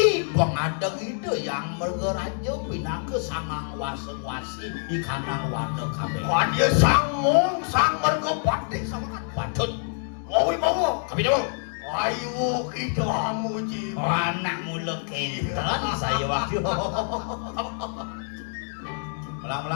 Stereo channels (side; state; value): right; silent; 61 dB below the other